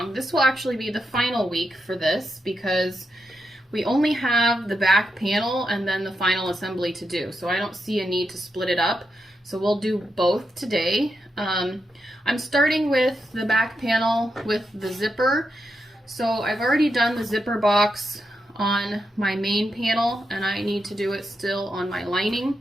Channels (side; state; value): both; normal; correlation 0.85